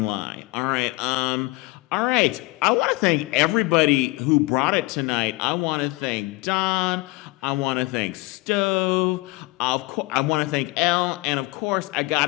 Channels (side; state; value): right; quieter; 23.6 dB